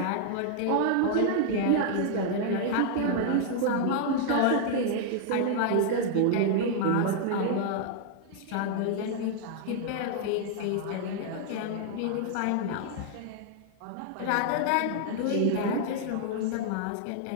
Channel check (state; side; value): different; both; correlation 0.00